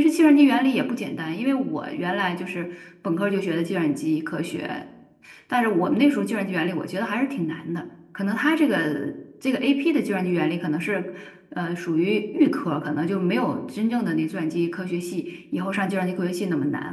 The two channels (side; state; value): both; identical; correlation 1.00